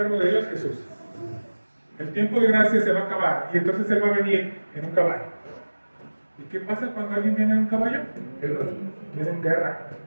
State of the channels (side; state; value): both; inverted; correlation -1.00